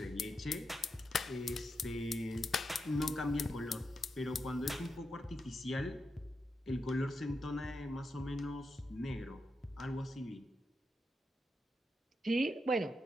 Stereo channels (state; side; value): normal; both; correlation 0.86